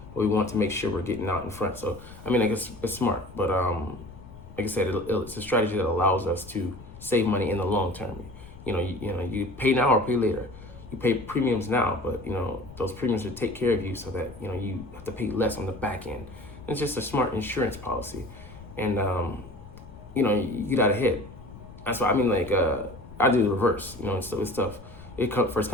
but we want to make sure we're getting out in front. So I guess it's smart, but like I said, it's a strategy that allows us to save money in the long term. You pay now or pay later. You pay premiums now, but those premiums will take care of you, so that you have to pay less on the back end. It's just a smart insurance policy. And, you know, you get out ahead. That's why I mean, like, I do the reverse, you know, and so with stuff. First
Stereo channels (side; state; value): left; noise; rumble, 17 dB below the sound